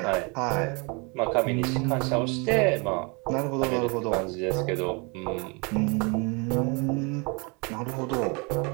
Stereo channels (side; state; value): left; quieter; 31.1 dB